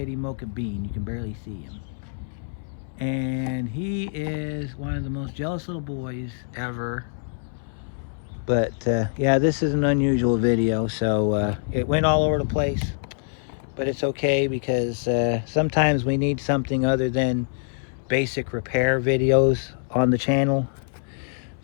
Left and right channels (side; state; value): right; silent; 62 dB below the other